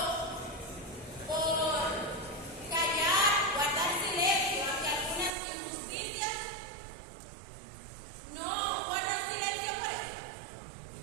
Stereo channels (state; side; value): drops out; left; at 5.3 s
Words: por callar, guardar silencio ante algunas injusticias. No guardan silencio por eso.